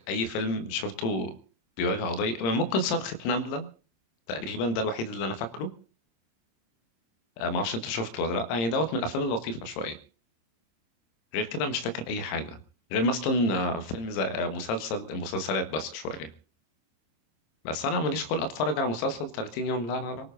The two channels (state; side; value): late; right; 26 ms